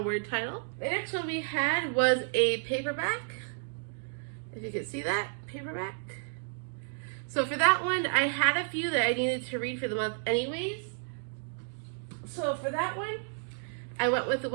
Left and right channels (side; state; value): left; silent; digital silence